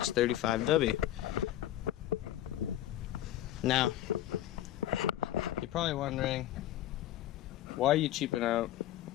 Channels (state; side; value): quieter; right; 13.0 dB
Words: Now you're probably wondering, why are you cheaping out?